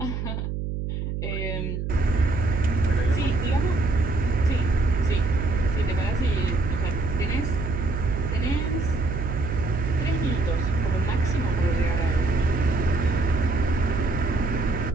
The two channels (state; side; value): noise; right; hum, 3 dB below the sound